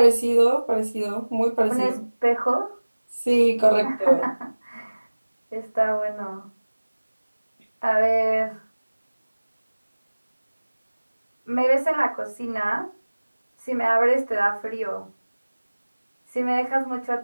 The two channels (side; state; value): both; inverted; correlation -1.00